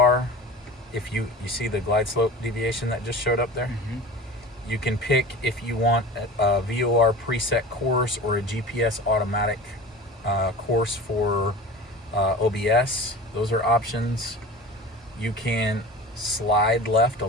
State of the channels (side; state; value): both; normal; correlation 0.36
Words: If you see the glide slope deviation that just showed up there, you can pick if you want a VOR preset course or a GPS automatic course for OBS. Those are options. You can slide left. A